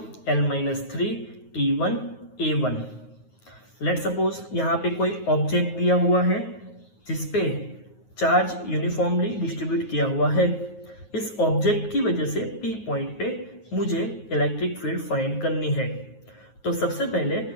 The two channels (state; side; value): late; right; 9.4 ms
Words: l minus 3 t1 a1. Let suppose यहाँ पे कोई object दिया हुआ है जिसपे charge uniformly distribute किया हुआ है. इस ऑब्जेक्ट की वजह से P पॉइंट पे मुझे इलेक्ट्रिक फील्ड फाइंड करनी है. तो सबसे पहले